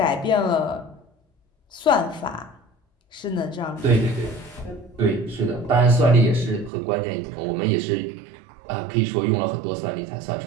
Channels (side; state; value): left; drops out; at 6.7 s